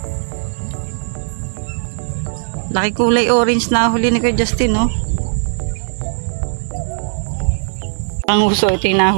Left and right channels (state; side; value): silent; left; digital silence